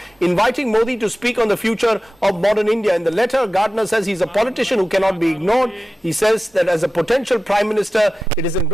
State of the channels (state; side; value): normal; both; correlation 0.94